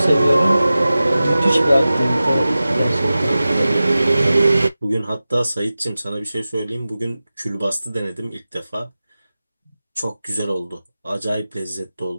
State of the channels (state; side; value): inverted; both; correlation -0.96